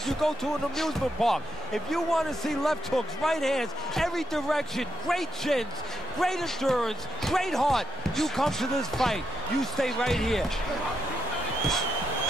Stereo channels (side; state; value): both; normal; correlation 0.80